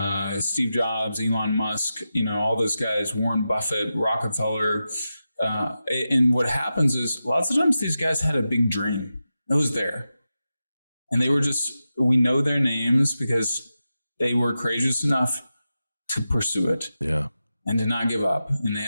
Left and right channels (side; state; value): both; inverted; correlation -0.91